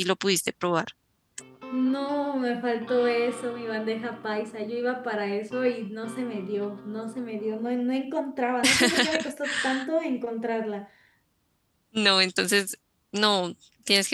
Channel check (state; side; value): identical; both; correlation 1.00